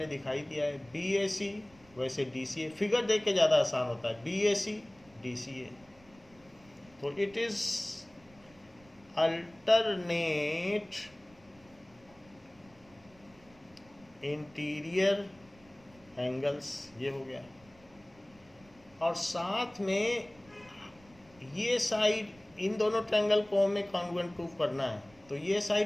दिखाई दिया है बी ए सी, वैसे डी सी ए, फिगर देख के ज़्यादा आसान होता है, B A C D C ए, तो it is alternate interior angles, ये हो गया। और साथ में ये साइड, इन दोनों ट्रायंगल को हमें कॉन्ग्रुएंट प्रूफ करना है, तो ये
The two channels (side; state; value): right; noise; rumble, 27 dB below the sound